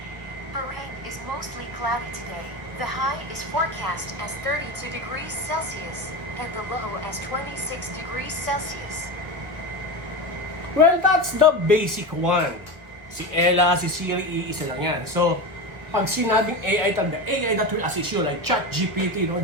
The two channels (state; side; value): late; left; 1.2 ms